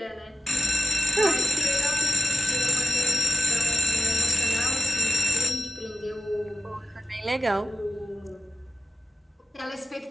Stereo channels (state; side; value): normal; both; correlation 0.93